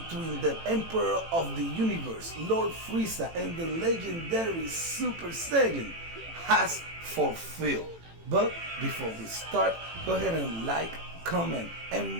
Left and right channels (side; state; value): left; late; 18 ms